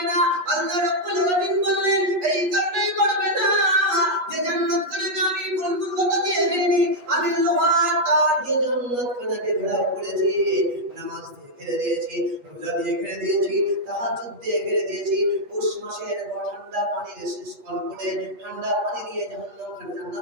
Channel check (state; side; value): late; left; 8.3 ms